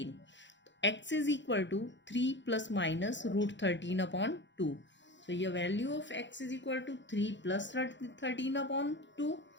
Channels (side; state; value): right; late; 0.53 ms